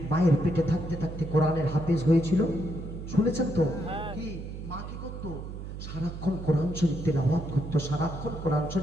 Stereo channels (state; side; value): noise; right; hum, 9 dB below the sound